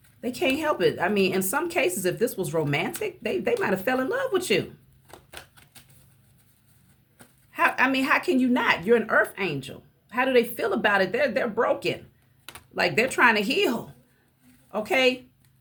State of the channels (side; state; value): both; identical; correlation 1.00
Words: They can't help it. I mean, in some cases, if this was romantic, they might have fell in love with you. How can you not? You're an earth angel. How do they feel about it? They're broken. Like, they're trying to heal. Okay?